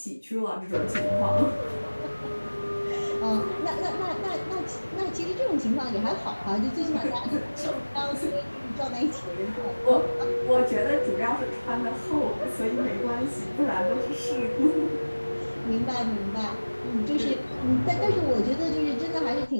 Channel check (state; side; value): inverted; both; correlation -1.00